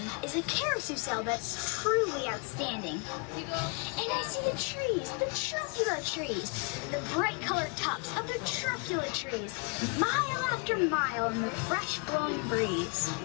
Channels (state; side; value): quieter; right; 33.4 dB